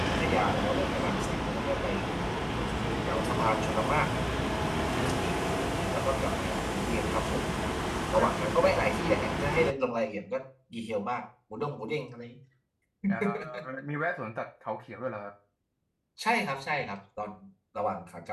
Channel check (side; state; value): both; identical; correlation 1.00